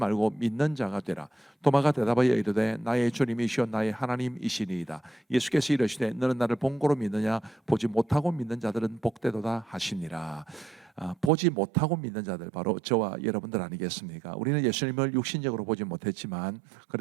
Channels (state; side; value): drops out; left; at 11.3 s